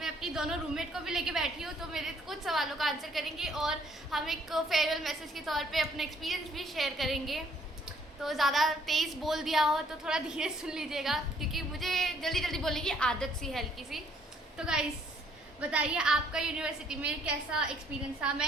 अपनी दोनों रूममेट को भी लेके बैठी हूँ, तो मेरे कुछ सवालों का आंसर करेंगे और हम एक फेयरवेल मैसेज के तौर पे अपना एक्सपीरियंस भी शेयर करेंगे। तो ज़्यादा तेज़ बोल दिया हो तो थोड़ा धीरे सुन लीजिएगा, क्योंकि मुझे जल्दी जल्दी बोलने की आदत सी है हल्की सी। तो गाइस, बताइए आपका यूनिवर्सिटी में कैसा एक्सपीरियंस था,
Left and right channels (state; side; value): normal; both; correlation 0.64